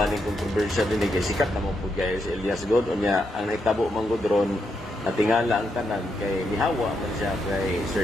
ni controversial dinhi kay sikat na mo pud kay si Elias God unya ang nahitabo manggod ron natingala ang tanan kay nihawa man siya kay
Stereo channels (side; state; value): both; normal; correlation 0.81